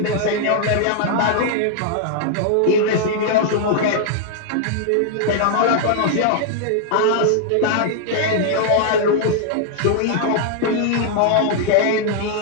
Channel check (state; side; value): different; both; correlation 0.00